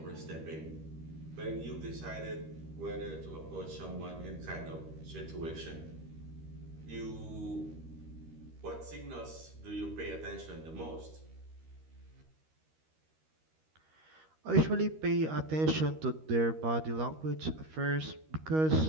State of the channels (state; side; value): late; left; 13 ms